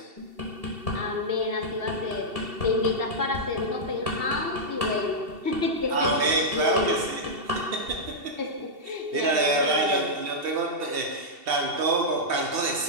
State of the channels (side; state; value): left; late; 2.7 ms